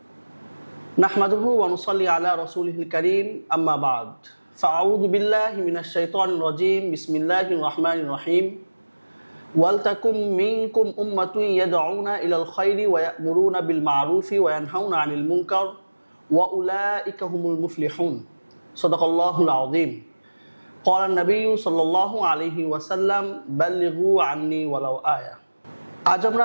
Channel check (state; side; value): inverted; both; correlation -1.00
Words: নাহমাদুহু ওয়া নুসাল্লি আলা রাসূলিহিল কারীম, আম্মা বা'দ। ফাআউযু বিল্লাহি মিনাশ শাইতানির রাজীম। বিসমিল্লাহির রাহমানির রহিম। ওয়াল তাকুম মিনকুম উম্মাতুন ইয়াদউনা ইলাল খায়রি ওয়া ইয়া'মুরুনা বিল মা'রুফি ওয়া ইয়ানহাউনা আনিল মুনকার ওয়া উলাইকা হুমুল মুফলিহুন। সাদাকাল্লাহুল আযীম। ক্বালা নবিয়্যু সাল্লাল্লাহু আলাইহি ওয়াসাল্লাম, বাল্লিগু আন্নী ওয়ালাউ আয়া। আজ